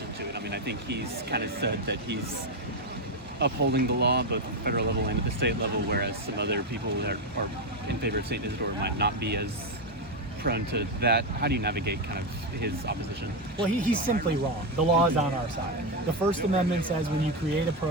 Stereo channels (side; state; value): both; normal; correlation 0.08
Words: to it? I mean, I think he's kind of said that he's upholding the law both at the federal level and at the state level, whereas some other people that are in favor of St. Isidore might not be as prone to that. How do you navigate kind of his opposition? Well, he's simply wrong. The law is on our side. The First Amendment says when you create a